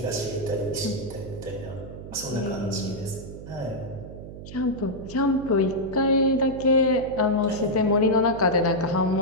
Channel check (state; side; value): noise; right; hum, 12 dB below the sound